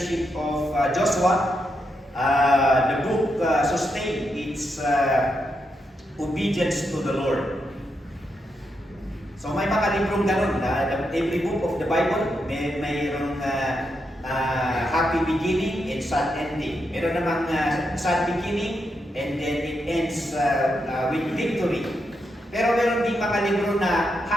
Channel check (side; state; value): both; normal; correlation 0.83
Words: of Joshua, the book sustained its obedience to the Lord. So may mga librong ganun, every book of the Bible, mayroong happy beginning and sad ending. Meron namang sad beginning and then it ends with victory. Pero meron din mga libro na